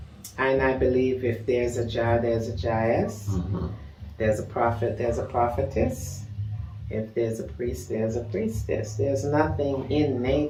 I believe if there's a Jah, there's a Jahess, there's a prophet, there's a prophetess. If there's a priest, there's a priestess. There's nothing in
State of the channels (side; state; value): both; identical; correlation 1.00